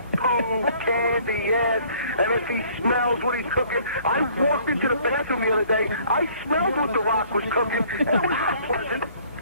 Poo candy ass, and if he smells what he's cooking. I walked into the bathroom the other day, I smelled what The Rock was cooking, and it was not pleasant.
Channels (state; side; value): inverted; both; correlation -0.57